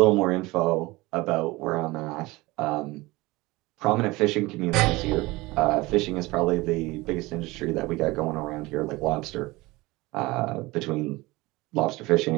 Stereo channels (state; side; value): quieter; left; 21.4 dB